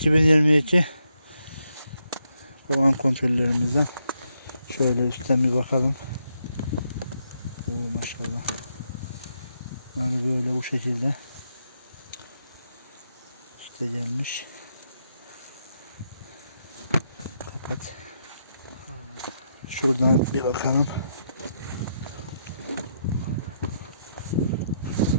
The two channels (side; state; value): both; inverted; correlation -0.78